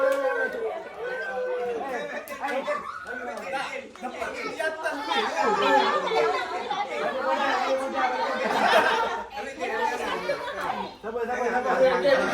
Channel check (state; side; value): identical; both; correlation 1.00